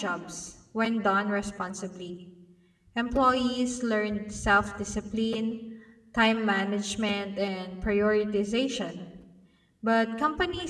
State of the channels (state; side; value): identical; both; correlation 1.00